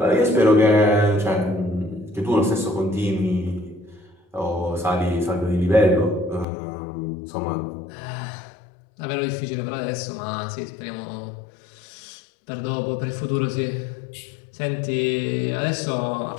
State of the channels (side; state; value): right; drops out; at 6.5 s